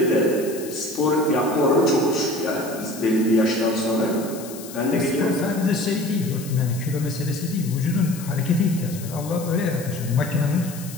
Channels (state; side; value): noise; left; hiss, 14 dB below the sound